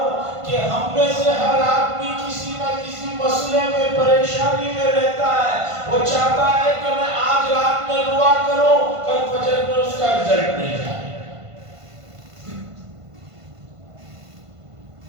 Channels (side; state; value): left; late; 1.5 ms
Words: کہ ہم میں سے ہر آدمی کسی نہ کسی مسئلے میں پریشانی میں رہتا ہے، وہ چاہتا ہے کہ میں آج رات میں دعا کروں، کل فجر میں اس کا رزلٹ مل جائے۔